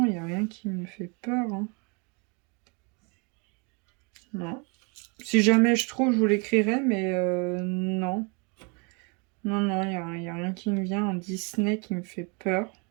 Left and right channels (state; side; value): quieter; left; 32.9 dB